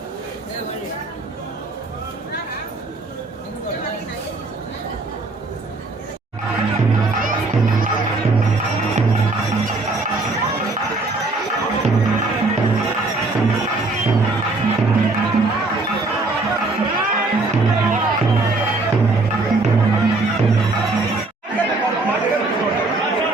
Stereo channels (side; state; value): left; quieter; 3.3 dB